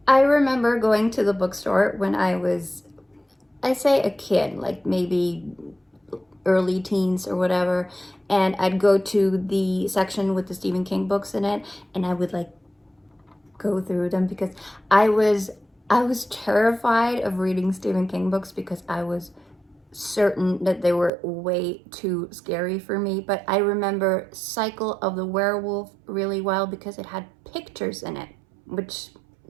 I remember going to the bookstore when I was, I say a kid, like maybe early teens or whatever, and I'd go to the section with the Stephen King books in it, and I would like go through them because I was terrified of reading Stephen King books because I was certain that they were way too scary for me. But I remember Cycle of the Werewolf really well because it had pictures in it, which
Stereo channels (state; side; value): drops out; left; at 21.1 s